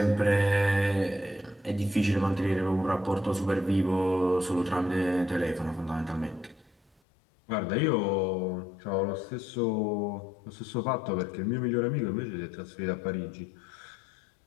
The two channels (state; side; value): drops out; right; at 6.9 s